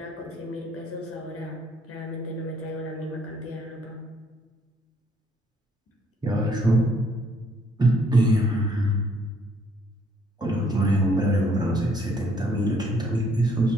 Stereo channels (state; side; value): normal; both; correlation 0.65